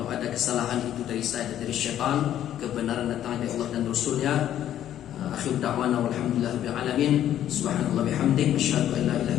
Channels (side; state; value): right; quieter; 11.3 dB